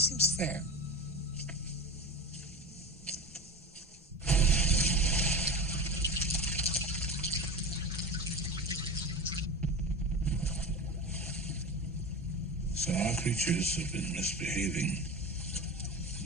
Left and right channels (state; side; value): normal; both; correlation 0.28